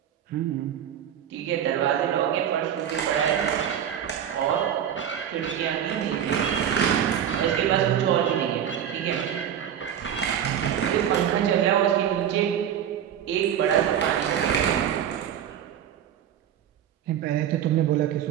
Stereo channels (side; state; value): left; quieter; 9.5 dB